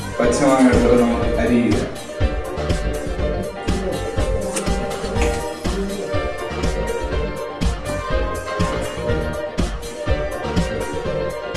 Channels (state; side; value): identical; both; correlation 1.00